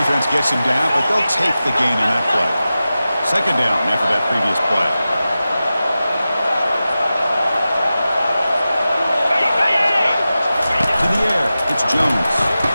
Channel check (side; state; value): both; inverted; correlation -0.94